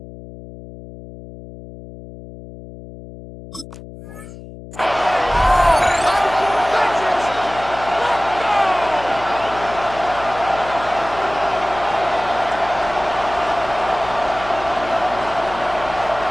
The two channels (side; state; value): left; noise; hum, 15 dB below the sound